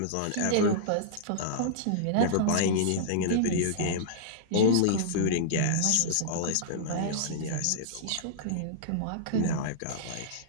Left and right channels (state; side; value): different; both; correlation -0.02